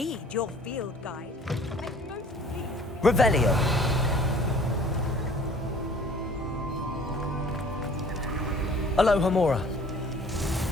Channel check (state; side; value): normal; both; correlation 0.51